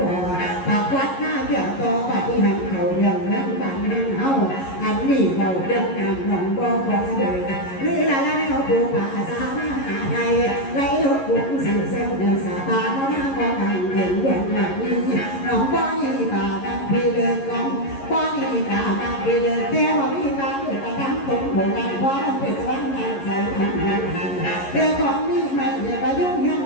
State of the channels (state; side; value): late; right; 11 ms